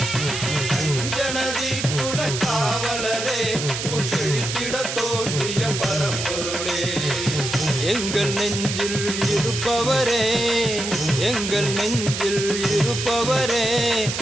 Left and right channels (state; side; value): noise; right; hiss, 4 dB below the sound